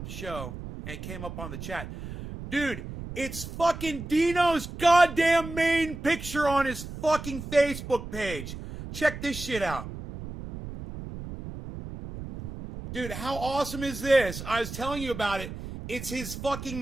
the show, and it came up on the chat. Dude, it's fucking Dino's goddamn main picture on his fucking Facebook page. Check this shit out. Dude, how awesome is this? I was telling you about it. It's his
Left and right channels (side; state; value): right; noise; rumble, 10 dB below the sound